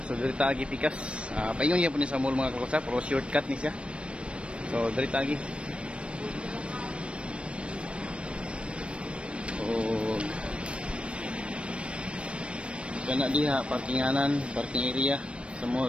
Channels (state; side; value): late; left; 0.059 ms